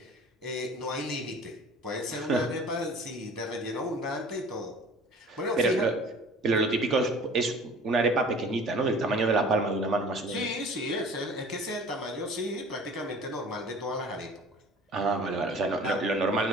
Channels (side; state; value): both; normal; correlation 0.45